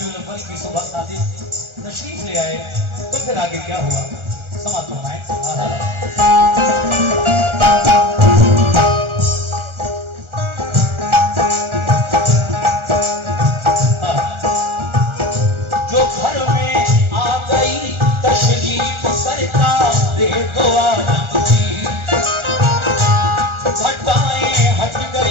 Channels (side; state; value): left; late; 1.4 ms